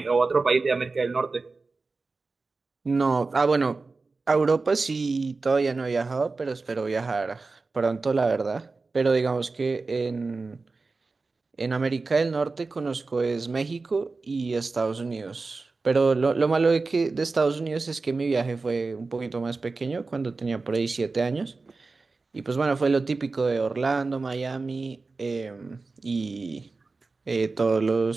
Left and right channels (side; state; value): left; quieter; 3.9 dB